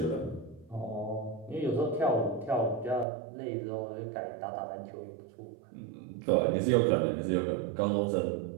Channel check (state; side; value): drops out; left; at 3.1 s